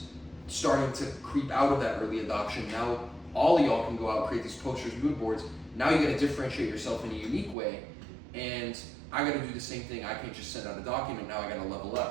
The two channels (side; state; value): left; drops out; at 7.6 s